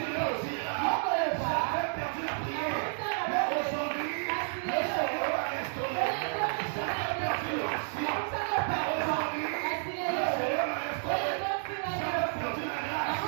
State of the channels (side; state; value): left; silent; 57 dB below the other